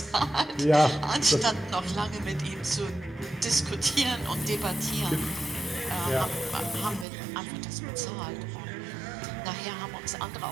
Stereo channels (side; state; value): left; drops out; at 7.1 s